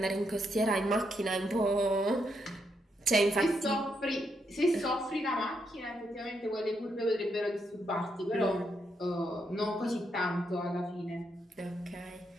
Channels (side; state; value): both; normal; correlation 0.79